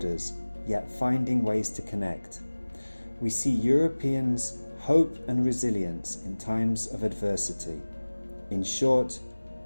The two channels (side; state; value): both; inverted; correlation -1.00